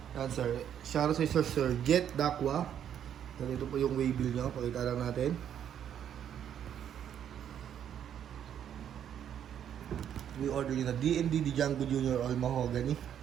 Yan sir. Shoutout sa Sir Jet Dakwa. Yan, ito po yung waybill nyo. Pakita lang natin. We order nyo na D&D Django Jr. All Mahogany.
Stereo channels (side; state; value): left; quieter; 9.4 dB